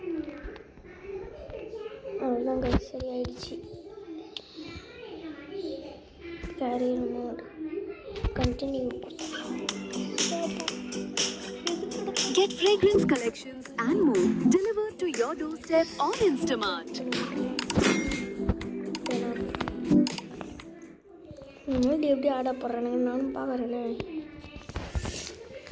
அவ்வளோதான் கைஸ், சரியாயிடுச்சு. Career mode continue. Get fragrance collections and more delivered to your doorstep on Instamart. இந்த எப்படி ஆட போடுறானுங்க நானும் பார்க்குறேனே.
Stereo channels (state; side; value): identical; both; correlation 1.00